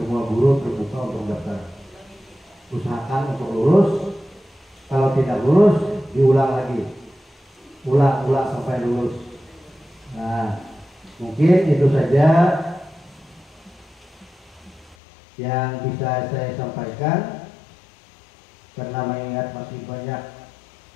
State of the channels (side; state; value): right; drops out; at 15.0 s